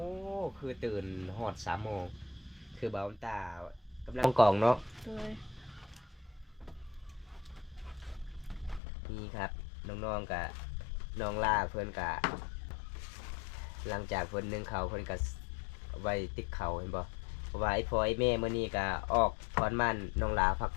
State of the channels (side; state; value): right; drops out; at 8.8 s